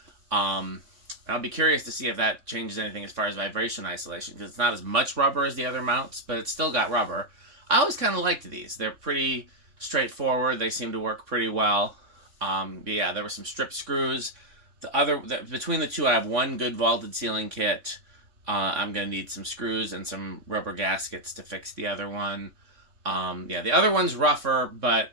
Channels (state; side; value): late; left; 3.6 ms